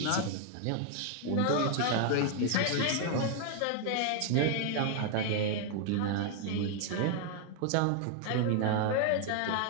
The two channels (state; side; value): different; both; correlation 0.00